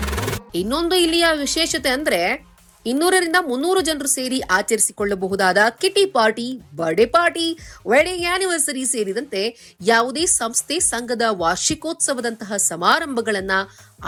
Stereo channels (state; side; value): identical; both; correlation 1.00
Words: ಇನ್ನೊಂದು ಇಲ್ಲಿಯ ವಿಶೇಷತೆ ಅಂದ್ರೆ 200ರಿಂದ 300 ಜನರು ಸೇರಿ ಆಚರಿಸಿಕೊಳ್ಳಬಹುದಾದ kitty party, birthday party, wedding anniversary ಸೇರಿದಂತೆ ಯಾವುದೇ ಸಂಸ್ಥೆ ಸಂಘದ ವಾರ್ಷಿಕೋತ್ಸವದಂತಹ ಸಮಾರಂಭಗಳನ್ನ